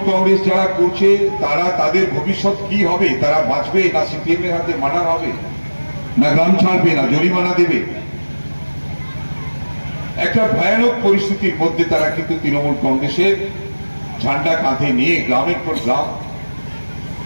কংগ্রেস যারা করছে তারা তাদের ভবিষ্যৎ কি হবে, তারা বাঁচবে না সিপিএম এর হাতে মারা হবে, না গ্রাম ছাড়বে, না জরিমানা দেবে। একটা ভয়ানক পরিস্থিতির মধ্যে তারা কিন্তু তৃণমূল কংগ্রেসের ঝান্ডা কাঁধে নিয়ে গ্রামের পর গ্রাম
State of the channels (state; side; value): inverted; both; correlation -1.00